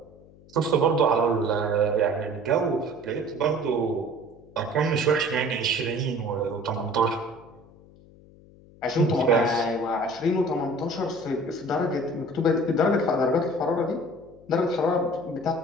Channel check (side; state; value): left; noise; hum, 24 dB below the sound